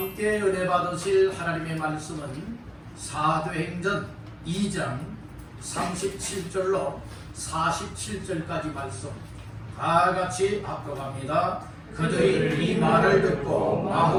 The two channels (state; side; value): identical; both; correlation 1.00